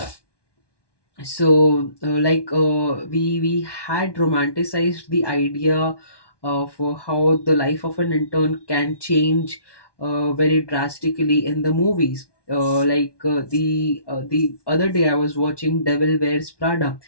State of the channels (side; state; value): right; late; 1.1 ms